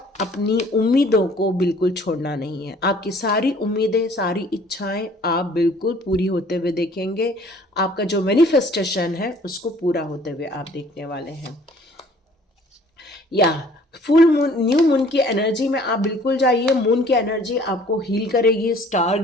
अपनी उम्मीदों को बिल्कुल छोड़ना नहीं है। आपकी सारी उम्मीदें, सारी इच्छाएं आप बिल्कुल पूरी होते हुए देखेंगे। आपका जो मैनिफेस्टेशन है उसको पूरा होते हुए आप देखने वाले हैं। या फुल मून, न्यू मून की एनर्जी में आप बिल्कुल जाइए। मून की एनर्जी आपको हील करेगी। स्टार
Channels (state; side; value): normal; both; correlation 0.54